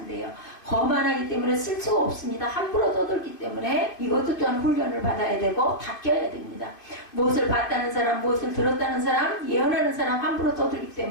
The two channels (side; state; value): right; late; 2.5 ms